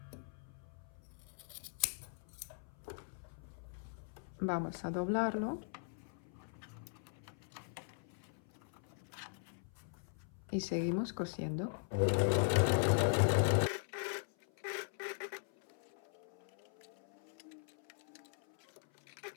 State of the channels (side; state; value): right; silent; 51 dB below the other